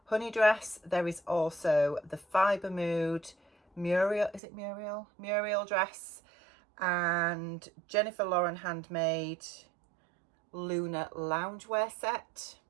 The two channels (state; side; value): drops out; left; at 4.4 s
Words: honey dress. There is also the Fibre Mood Muriel, is it Muriel? Muriel dress, and Jennifer Lauren handmade Luna loungewear set.